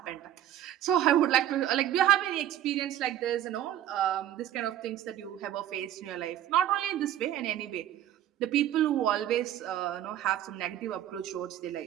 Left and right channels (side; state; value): left; quieter; 11.9 dB